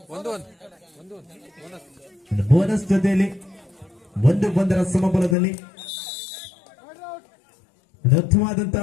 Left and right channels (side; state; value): right; drops out; at 5.4 s